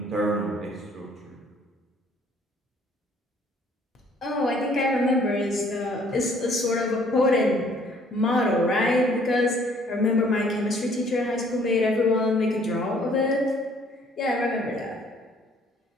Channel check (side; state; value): both; normal; correlation 0.60